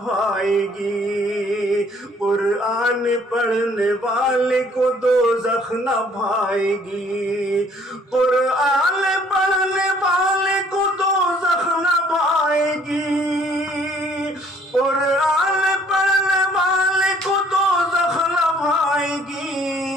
بھائے گی، قرآن پڑھنے والے کو دوزخ نہ بھائے گی، قرآن پڑھنے والے کو دوزخ نہ بھائے گی، قرآن پڑھنے والے کو دوزخ نہ بھائے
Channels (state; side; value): normal; both; correlation 0.60